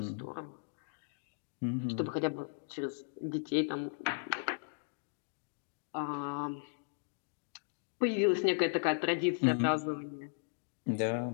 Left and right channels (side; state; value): right; silent; digital silence